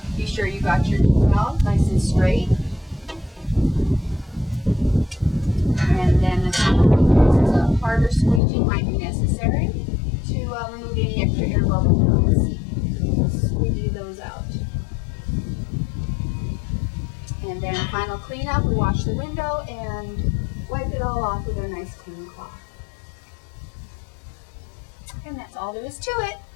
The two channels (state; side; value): drops out; right; at 8.4 s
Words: Be sure you got your decal nice and straight. And then a harder squeegee might be necessary to remove any extra air bubbles you can see. Squeegee those out. And then final cleanup, we wash the window and wipe it all off with a nice clean cloth. And that's all there is to it.